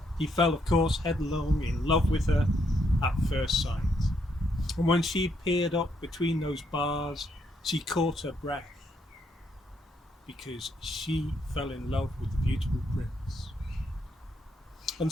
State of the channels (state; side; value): normal; both; correlation 0.75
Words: he fell, of course, headlong in love with her at first sight. And when she peered up between those bars, she caught her breath because she fell in love with the beautiful prince. And